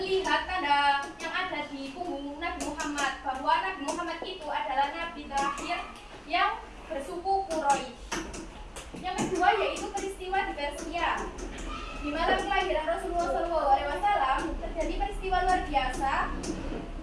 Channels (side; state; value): both; identical; correlation 1.00